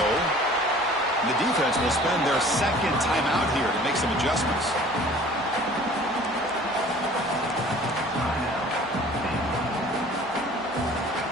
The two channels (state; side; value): normal; both; correlation 0.48